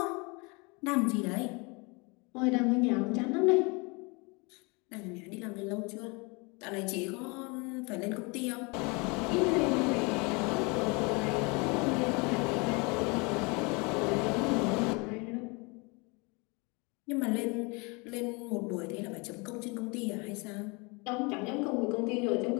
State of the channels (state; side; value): quieter; right; 29.1 dB